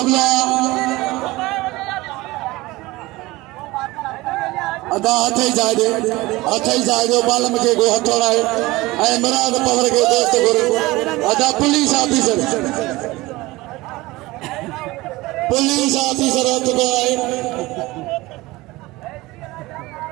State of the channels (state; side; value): quieter; left; 20.3 dB